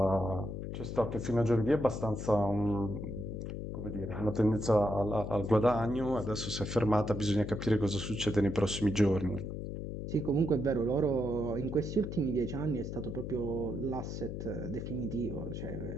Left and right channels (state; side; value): noise; left; hum, 6 dB below the sound